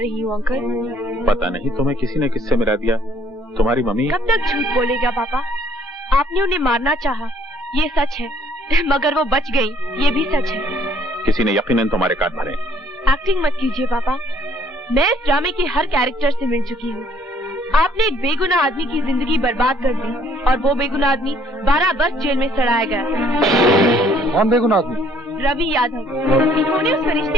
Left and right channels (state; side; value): normal; both; correlation 0.62